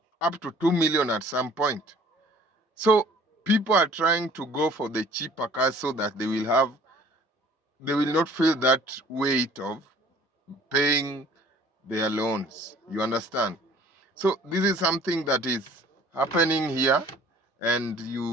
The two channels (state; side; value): normal; both; correlation 0.53